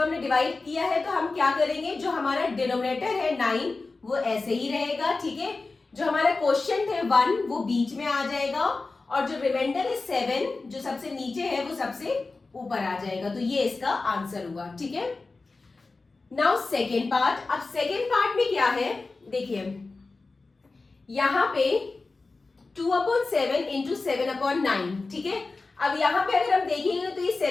हमने डिवाइड किया है तो हम क्या करेंगे? जो हमारा डिनोमिनेटर है 9 वो ऐसे ही रहेगा, ठीक है? जो हमारा क्वेश्चन थे 1 वो बीच में आ जाएगा और जो रिमाइंडर है 7 जो सबसे नीचे है वो सबसे ऊपर आ जाएगा. तो ये इसका आंसर हुआ, ठीक है? Now second part. अब सेकेंड पार्ट में क्या है? देखिए यहां पे 2/7 इंटू 7/9, ठीक है? अब यहाँ पे अगर हम देखेंगे तो ये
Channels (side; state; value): right; quieter; 3.7 dB